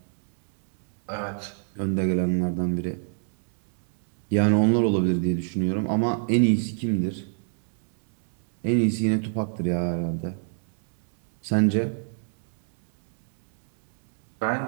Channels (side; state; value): left; silent; digital silence